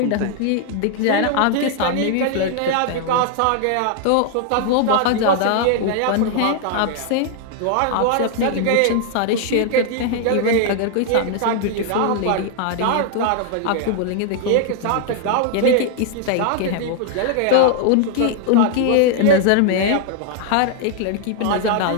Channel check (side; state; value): both; different; correlation 0.00